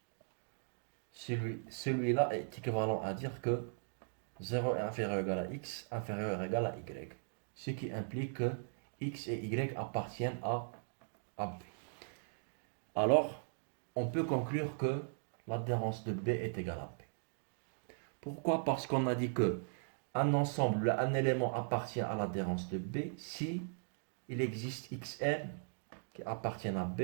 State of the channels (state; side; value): silent; left; digital silence